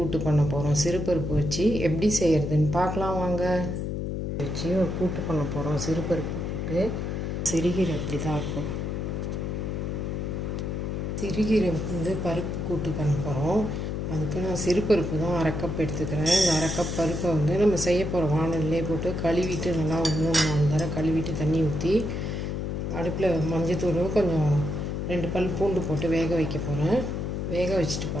பண்ண போகிறோம். சிறுபருப்பு வச்சு எப்படி செய்கிறதுன்னு பார்க்கலாம் வாங்க. வச்சு ஒரு கூட்டு பண்ண போகிறோம். சிறுபருப்பு கூட்டு. சிறுகீரை இப்படி தான் இருக்கும். சிறுகீரை பருப்பு கூட்டு பண்ண போகிறோம். அதுக்கு நான் சிறுபருப்பு தான் 1/2 கப் எடுத்துக்கிறேன். இந்த 1/2 கப் பருப்பை நம்ம செய்ய போகிற வானல்லே போட்டு கழுவிட்டு நல்லா ஒரு 3-4 தடவை கழுவிட்டு தண்ணி ஊற்றி அடுப்பில் மஞ்சத்தூள் கொஞ்சம் 2 பல் பூண்டு போட்டு வேக வைக்க போகிறேன். வேக வச்சுட்டு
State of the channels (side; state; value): left; noise; hum, 2 dB below the sound